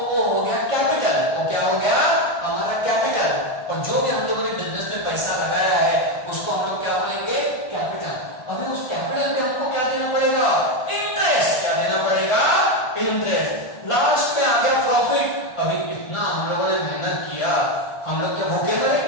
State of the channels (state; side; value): late; right; 1.5 ms